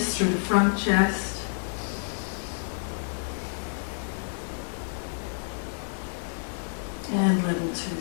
through the front chest. And level 2,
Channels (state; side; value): silent; right; 59 dB below the other